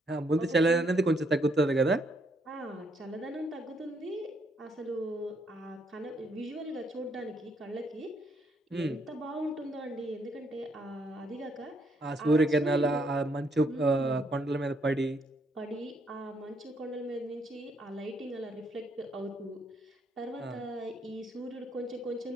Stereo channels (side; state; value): both; normal; correlation 0.72